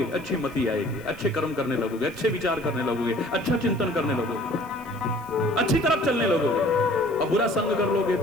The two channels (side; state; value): left; noise; hiss, 25 dB below the sound